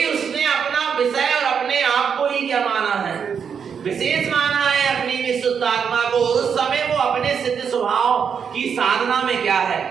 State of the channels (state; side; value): quieter; left; 6.9 dB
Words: उसने अपना विषय और अपने आप को ही क्या माना है, विशेष माना है, अपनी विशुद्ध आत्मा को। उस समय वो अपने सिद्ध स्वभाव की साधना में क्या है,